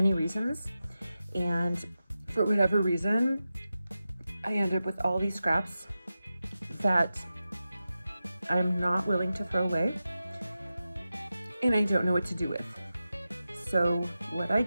reasons. And for whatever reason, I end up with all these scraps that I'm not willing to throw away, and I don't know what to do with. So what I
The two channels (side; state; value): both; inverted; correlation -0.92